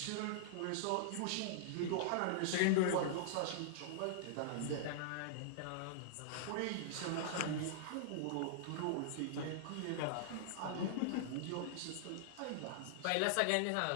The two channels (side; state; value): both; different; correlation -0.01